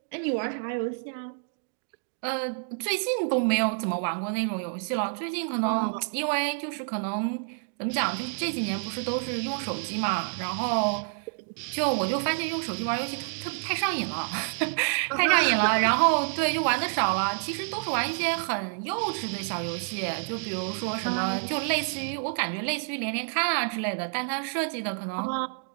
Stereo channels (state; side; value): silent; left; digital silence